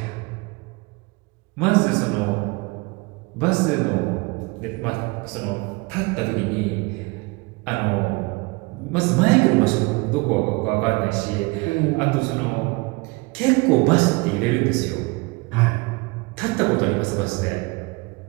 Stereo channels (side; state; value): left; quieter; 26.0 dB